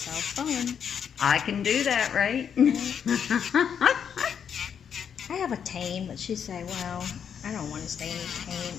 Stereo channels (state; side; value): quieter; right; 7.8 dB